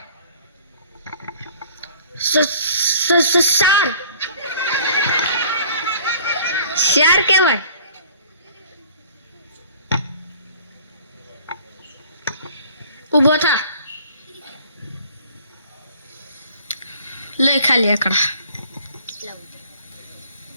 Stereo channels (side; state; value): both; inverted; correlation -0.52